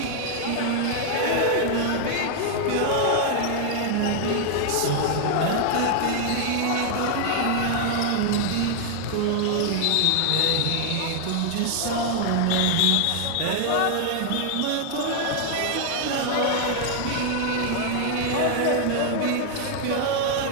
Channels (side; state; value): both; different; correlation 0.00